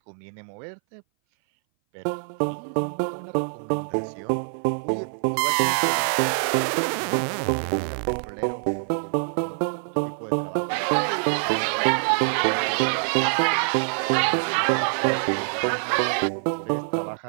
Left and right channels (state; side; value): silent; left; 59 dB below the other